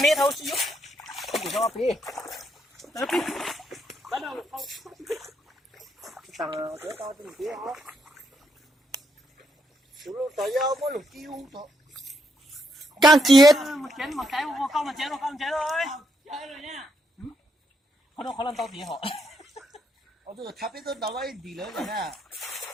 thôi chứ. Không được lo đi. Tapi bắt đầu không. Tao tới tao tìm kia hả? Chú lo tao giao mỗi lúc kêu thôi. Càng chết. Một chén một cái không một chén rồi. Chơi rồi nha. Không làm tao tí họ. Ở đây tháp ấy tôi đâu ấy đi nữa rồi nè.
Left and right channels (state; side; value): normal; both; correlation 0.77